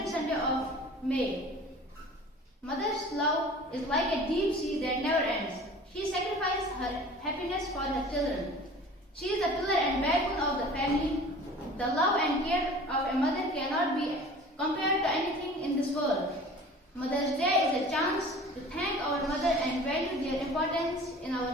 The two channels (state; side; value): normal; both; correlation 0.43